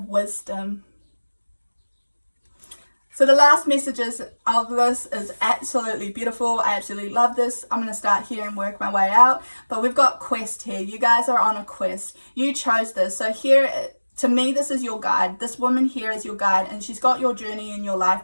wisdom. So the last messages of this is absolutely beautiful. I absolutely love this. I'm going to start here and work my way out. But we've got quest here. You guys are on a quest. You chose this. So here To me, this is your guide. This woman here is your guide, and she's got your journey and your life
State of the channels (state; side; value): inverted; both; correlation -1.00